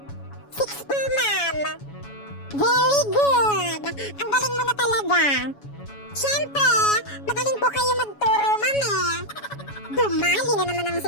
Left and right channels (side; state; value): right; late; 7.1 ms